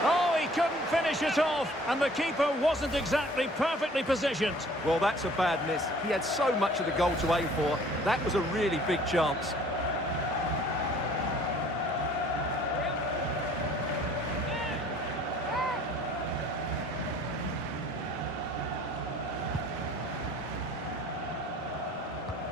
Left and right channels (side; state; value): both; normal; correlation 0.53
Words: Oh, he couldn't finish it off, and the keeper wasn't exactly perfectly positioned. Well, that's a bad miss. He had so much of the goal to aim for. That was a really big chance.